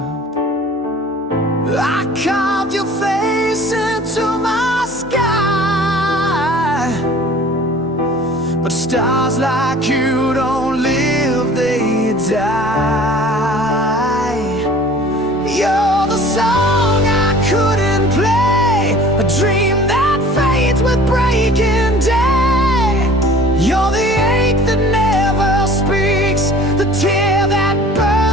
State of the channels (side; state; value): both; normal; correlation 0.47